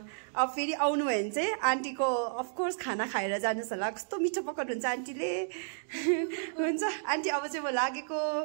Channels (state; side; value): silent; left; digital silence